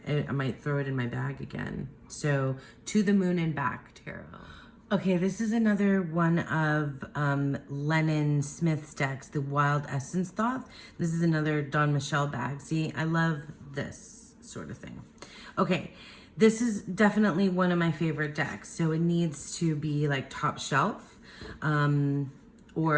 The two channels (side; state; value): both; identical; correlation 1.00